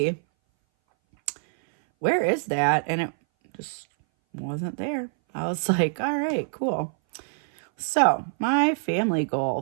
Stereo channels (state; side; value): silent; left; 59 dB below the other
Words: where is that? And it just wasn't there. I was like, all right, cool. So my family